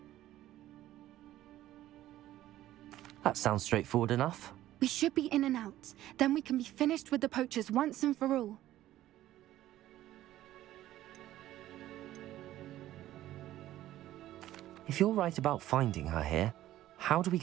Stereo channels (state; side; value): quieter; left; 14.1 dB